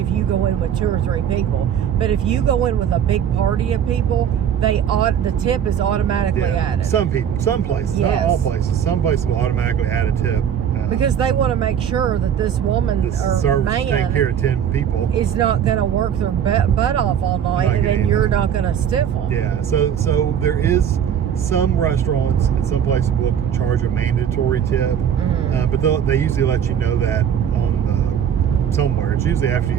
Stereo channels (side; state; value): left; quieter; 8.8 dB